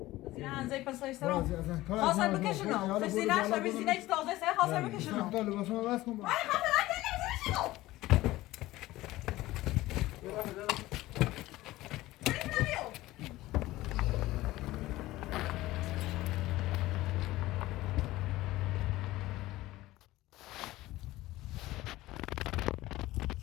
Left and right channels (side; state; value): right; quieter; 17.4 dB